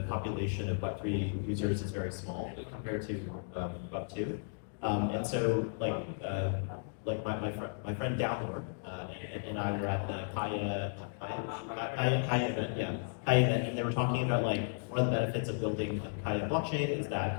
population of Web3 users is very small compared to Web2. And so, like my friend Downward and I were at the Kaya event, Kaya event, and they were talking about like one of the benefits of building Kaya blockchain is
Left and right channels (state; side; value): silent; right; digital silence